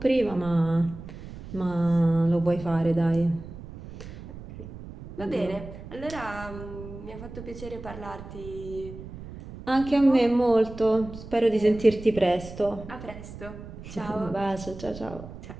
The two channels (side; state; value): right; noise; rumble, 13 dB below the sound